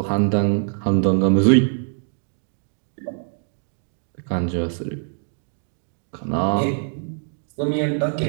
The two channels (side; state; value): left; silent; 62 dB below the other